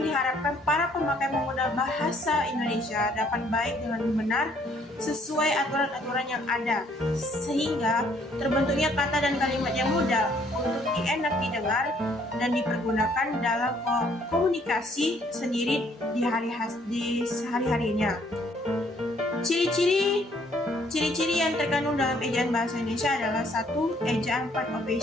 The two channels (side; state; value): both; normal; correlation 0.64